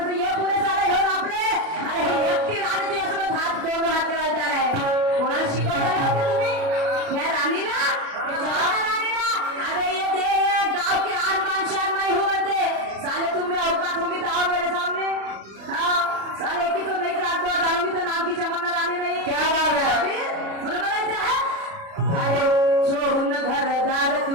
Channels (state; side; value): late; left; 36 ms